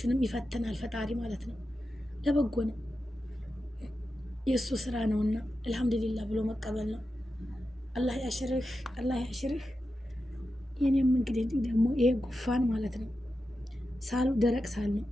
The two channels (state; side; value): normal; both; correlation 0.90